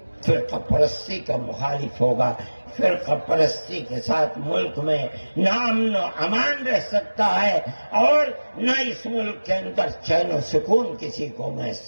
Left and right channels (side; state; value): both; inverted; correlation -1.00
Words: فرقہ پرستی کا مخالف ہوگا۔ فرقہ پرستی کے ساتھ ملک میں نہ امن و امان رہ سکتا ہے، اور نہ اس ملک کے اندر چین و سکون کسی کو